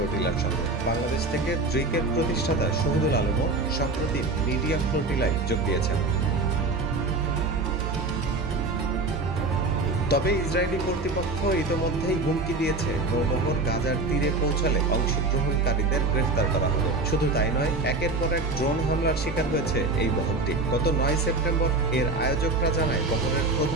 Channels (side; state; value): left; quieter; 3.3 dB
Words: সঙ্গে। বাংলাদেশ থেকে ড্রিকের প্রতিষ্ঠাতা শহীদুল আলমও সম্প্রতি মিডিয়া ফ্লোটিলায় যোগ দিয়েছেন। তবে ইসরায়েলি কর্তৃপক্ষ ইতোমধ্যেই হুমকি দিয়েছে নৌবহর গাজার তীরে পৌঁছালে অংশগ্রহণকারীদের গ্রেফতার করা হবে। শুধু তাই নয়, একের পর এক ড্রোন হামলার শিকার হয়েছে এই বহরটি। গত ৯ সেপ্টেম্বর এর আয়োজকরা জানায় বহরের